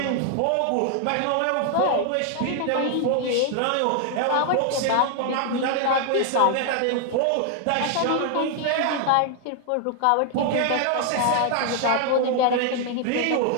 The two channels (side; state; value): both; different; correlation 0.00